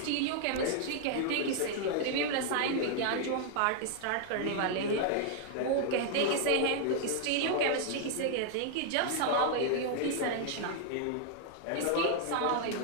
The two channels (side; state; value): both; different; correlation 0.00